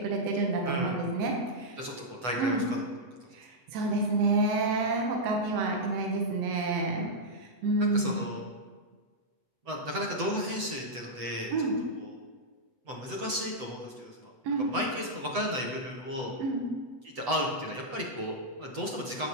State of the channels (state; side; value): late; left; 7.9 ms